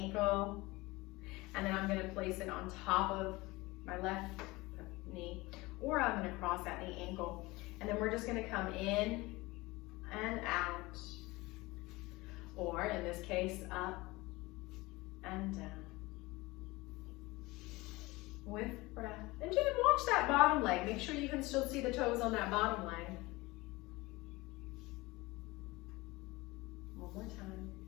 and then I'm gonna place it on top of my left knee, or I'm gonna cross at the ankle. And then we're just gonna come in and out, or in this case, up and down. With breath. And just watch that bottom leg. Make sure you can still see the toes on that bottom leg. One more time.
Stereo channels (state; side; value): quieter; right; 21.7 dB